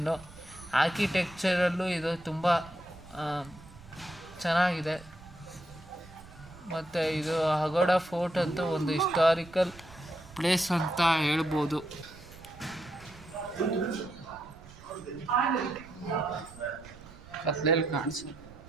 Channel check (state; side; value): noise; right; rumble, 20 dB below the sound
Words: ಆರ್ಕಿಟೆಕ್ಚರಲ್ಲೂ ಇದು ತುಂಬ ಚೆನ್ನಾಗಿದೆ. ಮತ್ತು ಇದು ಅಗೋಡಾ ಫೋರ್ಟ್ ಅಂತೂ ಒಂದು ಹಿಸ್ಟಾರಿಕಲ್ ಪ್ಲೇಸ್ ಅಂತ ಹೇಳ್ಬೋದು. ಕತ್ಲೆಯಲ್ಲಿ ಕಾಣಿಸು.